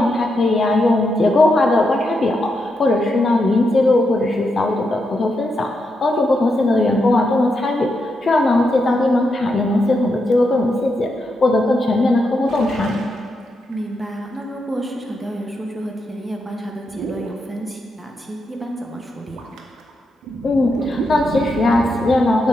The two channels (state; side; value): normal; both; correlation 0.84